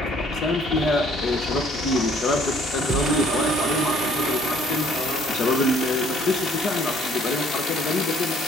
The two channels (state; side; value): normal; both; correlation 0.59